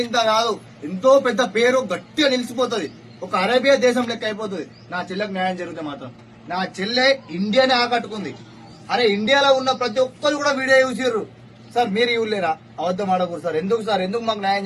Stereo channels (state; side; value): identical; both; correlation 1.00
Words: కాదు, ఎంతో పెద్ద పేరు గట్టిగా నిలిచిపోతుంది. ఒక అరేబియా దేశం లెక్క అయిపోతుంది. నా చెల్లెకు న్యాయం జరిగితే మాత్రం. నా చెల్లె ఇండియానే ఆకట్టుకుంది. అరే ఇండియాలో ఉన్న ప్రతి ఒక్కరు కూడా వీడియో చూసిర్రు. సార్ మీరు ఇవ్వలేరా? అబద్ధం ఆడకూడదు సార్. ఎందుకు సార్? ఎందుకు మాకు న్యాయం